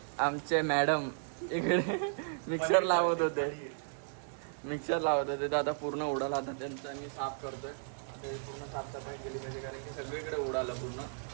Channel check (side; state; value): left; silent; 55 dB below the other